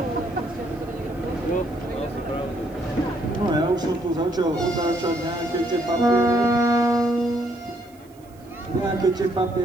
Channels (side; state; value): right; noise; hiss, 30 dB below the sound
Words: No ja už som tu začal otáčať nejaké tie